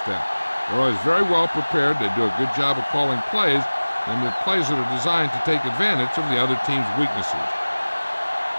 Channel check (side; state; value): both; inverted; correlation -1.00